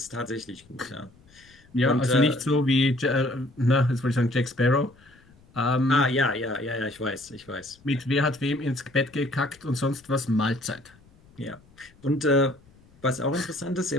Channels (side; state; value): left; noise; rumble, 28 dB below the sound